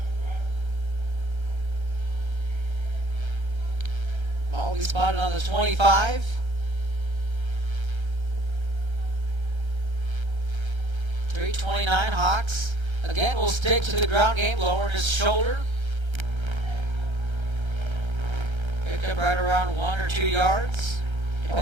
We spotted on the 25. .329 Hawks. Again, we'll stick to the ground game, lowering his shoulder. Picked up right around 1 or 2 yards,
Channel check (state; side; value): late; left; 1.3 ms